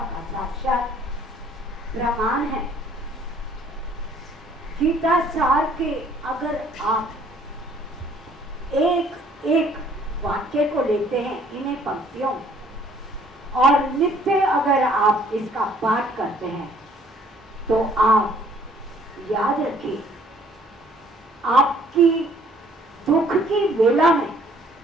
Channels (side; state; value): both; normal; correlation 0.60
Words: का साक्षात प्रमाण है। गीता सार के अगर आप एक एक वाक्य को लेते हैं, इन्हें पंक्तियों, और नित्य अगर आप इसका पाठ करते हैं, तो आप याद रखिए, आपकी दुख की वेला में